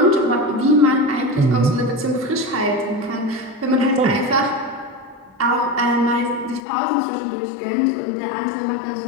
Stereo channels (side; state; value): right; drops out; at 6.6 s